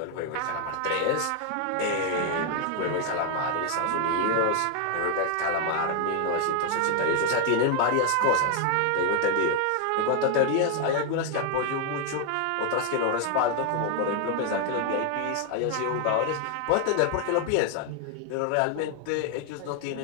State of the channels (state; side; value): different; both; correlation 0.00